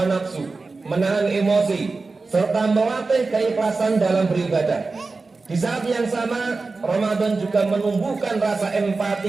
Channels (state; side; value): quieter; left; 3.9 dB